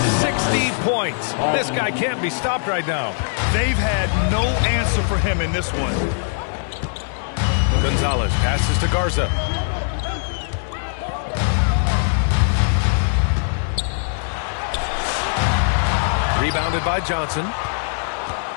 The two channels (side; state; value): right; silent; digital silence